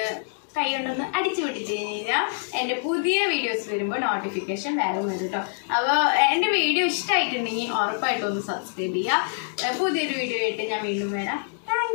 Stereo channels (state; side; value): silent; right; digital silence